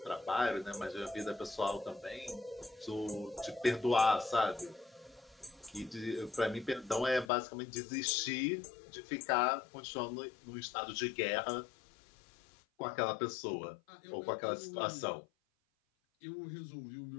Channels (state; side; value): drops out; right; at 7.3 s